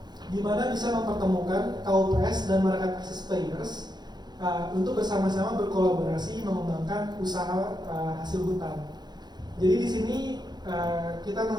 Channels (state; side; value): late; left; 0.20 ms